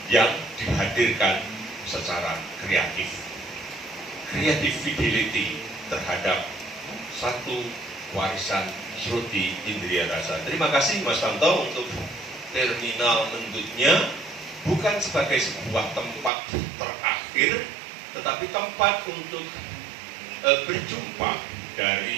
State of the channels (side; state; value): left; drops out; at 16.3 s